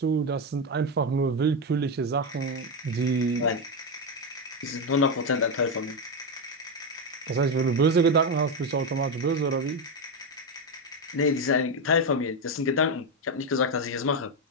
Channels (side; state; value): both; normal; correlation 0.09